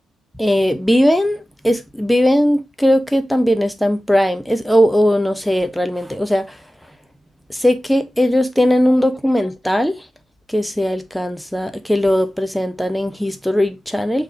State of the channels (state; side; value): normal; both; correlation 0.96